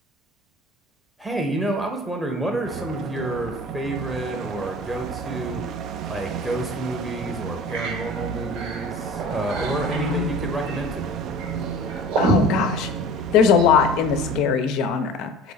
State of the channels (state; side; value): normal; both; correlation 0.40